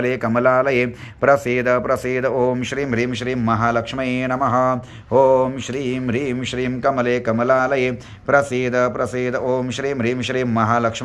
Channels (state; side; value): identical; both; correlation 1.00